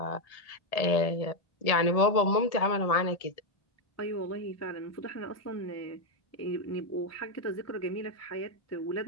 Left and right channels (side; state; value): right; late; 1.7 ms